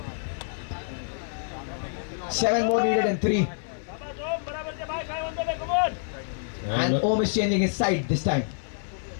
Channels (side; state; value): right; silent; 60 dB below the other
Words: Seven more needed in 3. And Om is changing his side this time.